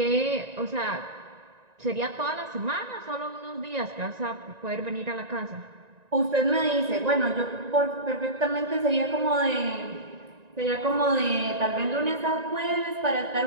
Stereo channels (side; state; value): left; late; 1.9 ms